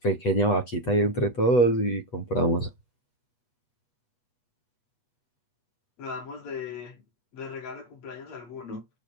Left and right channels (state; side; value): late; right; 8.2 ms